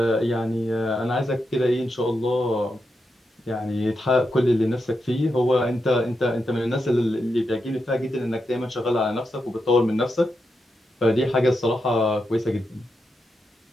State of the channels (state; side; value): normal; both; correlation 0.86